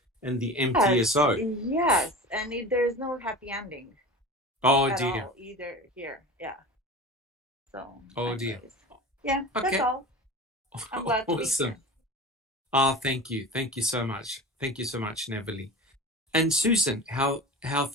and the MTSO. Yes, and there's no happy ending. Oh at dear. All, either here. Yeah. So, dear. Yeah, that's all. I'm glad to be here. Thank you. Thank you so much. Thank you so much, Neville. And Susan, how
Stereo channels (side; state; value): both; normal; correlation 0.34